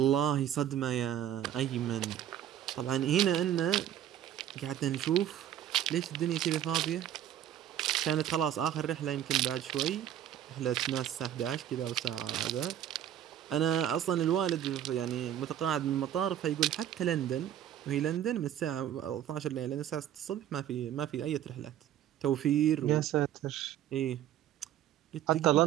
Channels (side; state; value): left; quieter; 11.1 dB